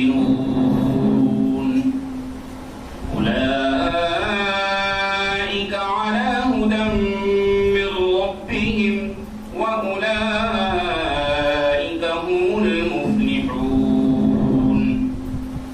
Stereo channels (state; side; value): identical; both; correlation 1.00